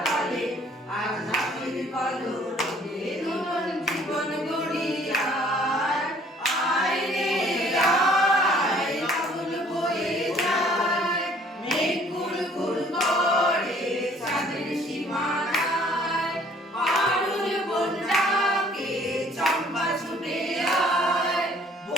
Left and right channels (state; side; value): normal; both; correlation 0.57